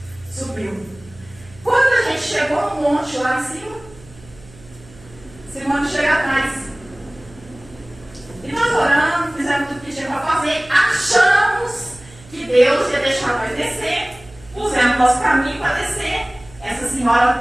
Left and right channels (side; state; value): right; noise; hum, 23 dB below the sound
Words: monte lá em cima. Esse monte chega atrás. E nós oramos, fizemos tudo que tinha para fazer, achamos que Deus ia deixar nós descer, pusemos nosso caminho para descer. Essa